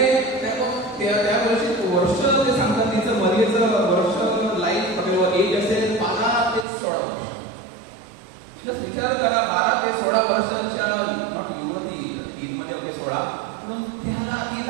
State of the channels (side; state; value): left; drops out; at 6.7 s